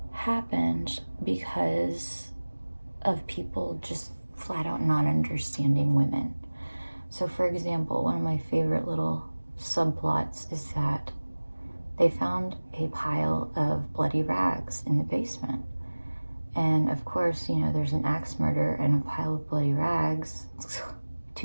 because of people just flat out not understanding women. So for example, one of my favorite little subplots is that they found a pile of bloody rags in the basement. And of course, you know, there's an axe murder and a pile of bloody rags,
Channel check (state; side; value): inverted; both; correlation -1.00